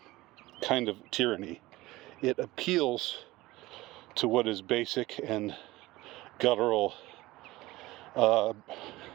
kind of tyranny. It appeals to what is basic and guttural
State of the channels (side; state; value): left; quieter; 18.9 dB